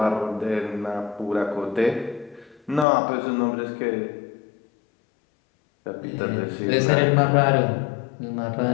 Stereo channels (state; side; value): drops out; right; at 2.9 s